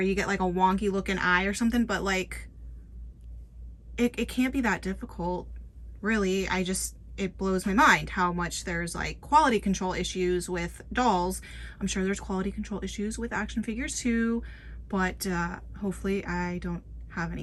get like a wonky looking eye or something, but like it can't be that difficult, really. It blows my mind how much there's like quality control issues with dolls. I'm sure there's quality control issues with action figures too, but hopefully I don't have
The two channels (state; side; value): identical; both; correlation 1.00